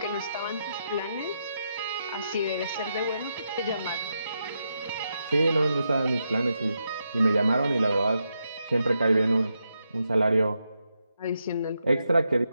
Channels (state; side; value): inverted; both; correlation -0.84